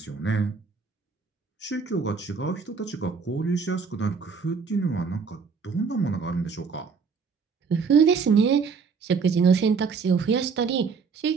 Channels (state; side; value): quieter; left; 5.4 dB